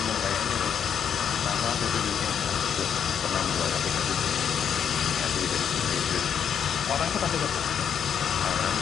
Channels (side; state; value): right; quieter; 8.0 dB